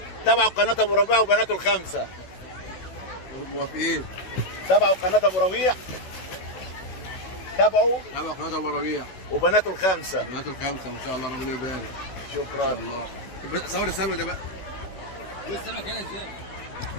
تابعوا قناة ابو ربيع وبناته الخمسة. موافقين. تابعوا قناة ابو ربيع، تابعوا قناة ابو ربيع وبناته الخمسة. بنات الخمسة ما شاء الله، ربنا يبارك. شكرا. الله. صور السمك ده بقى. السمك هنا ازاي؟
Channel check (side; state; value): right; late; 16 ms